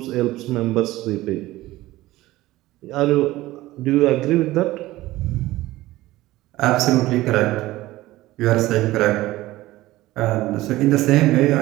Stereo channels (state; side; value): quieter; left; 17.3 dB